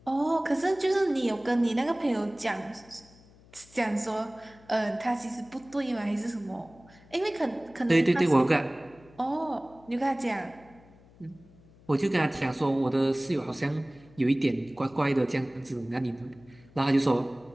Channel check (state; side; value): noise; left; hum, 26 dB below the sound